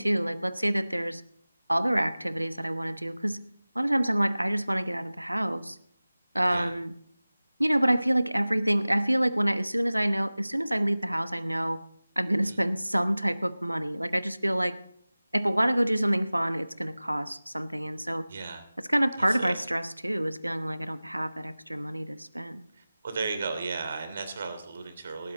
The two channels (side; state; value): both; inverted; correlation -0.98